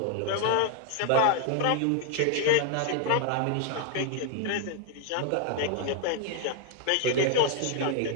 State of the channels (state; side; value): different; both; correlation 0.00